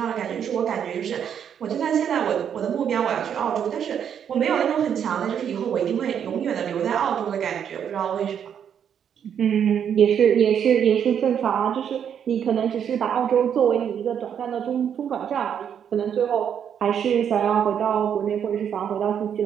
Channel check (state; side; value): quieter; left; 8.4 dB